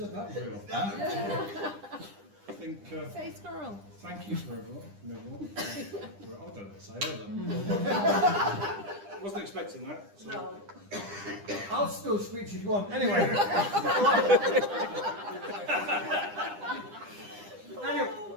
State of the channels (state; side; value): late; left; 9.9 ms